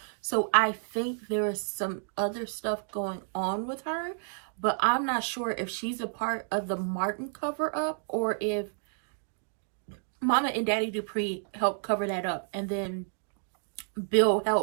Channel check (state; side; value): silent; left; digital silence